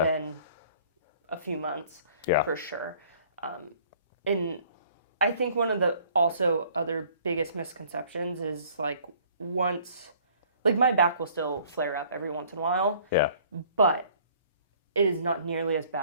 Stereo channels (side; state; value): both; inverted; correlation -0.56